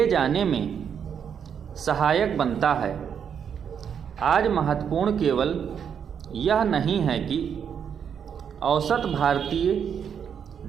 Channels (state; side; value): quieter; left; 7.7 dB